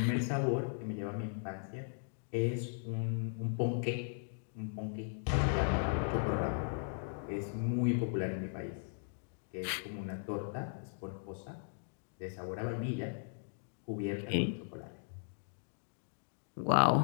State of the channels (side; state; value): right; silent; digital silence